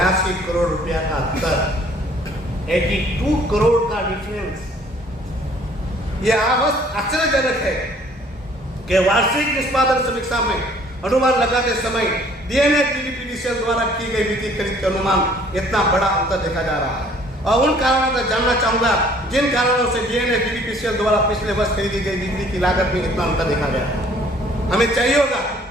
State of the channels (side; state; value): both; normal; correlation 0.57